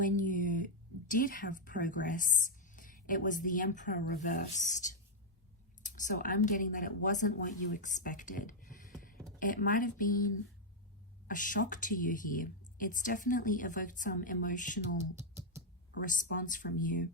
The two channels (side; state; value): both; normal; correlation 0.00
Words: you did have progress, it was the Emperor reversed. So I'm getting that it wasn't what you expected. It might have been a shock to you here. It's definitely evoked some emotional response from you.